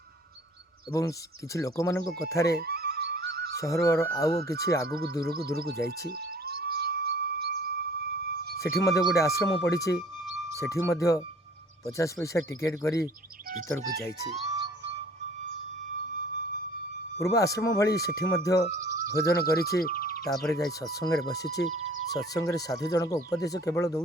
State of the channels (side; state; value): both; normal; correlation 0.52